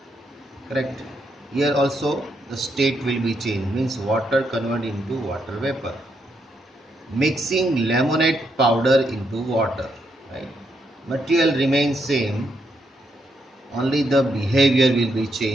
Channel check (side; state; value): both; normal; correlation 0.78